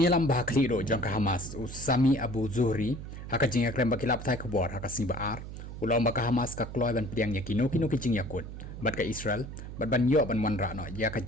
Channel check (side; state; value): right; noise; hum, 10 dB below the sound